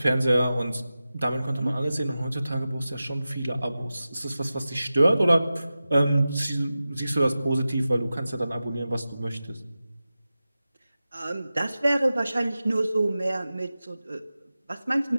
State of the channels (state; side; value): inverted; both; correlation -0.94